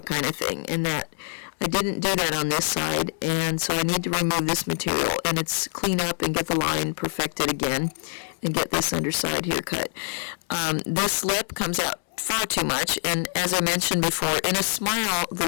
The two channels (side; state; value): right; silent; 62 dB below the other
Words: kind of thing, and that I didn't do that on this side, and so I need to remove this material, and it's clean up and get the line perfected again, and get this underside here cut. This lip comes out far too much, and as I mentioned before, in a smile, the